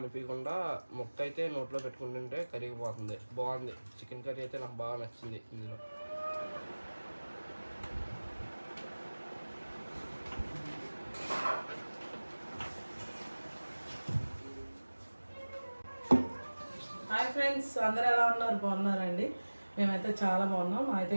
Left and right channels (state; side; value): inverted; both; correlation -1.00